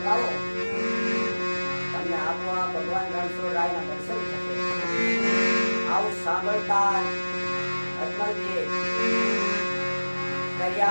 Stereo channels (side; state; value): both; inverted; correlation -1.00